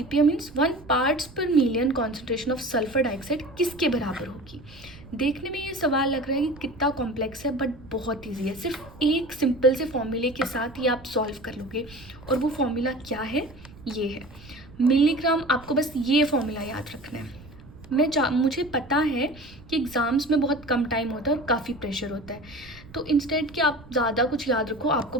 means 1 parts per million concentration of sulphur dioxide किसके बराबर होगी। देखने में ये सवाल लग रहा है कि कितना कॉम्प्लेक्स है, बट बहुत इजी है। सिर्फ एक सिंपल से फॉर्मूले के साथ ही आप सॉल्व कर लोगे। और वो फॉर्मूला क्या है, ये है मिलीग्राम। आपको बस ये फॉर्मूला याद रखना है। मुझे पता है कि एग्ज़ाम्स में बहुत कम टाइम होता है और काफ़ी प्रेशर होता है, तो इंस्टेड कि आप ज़्यादा कुछ याद रखो, आपको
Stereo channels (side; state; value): right; noise; rumble, 20 dB below the sound